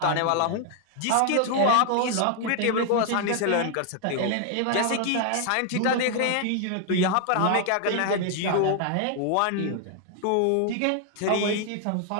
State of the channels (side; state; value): both; different; correlation 0.00